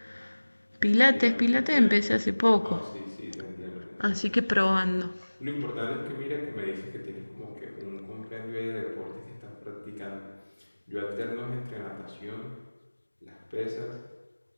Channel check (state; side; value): inverted; both; correlation -1.00